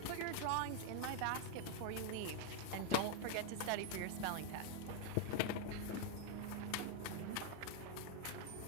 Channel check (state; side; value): different; both; correlation 0.00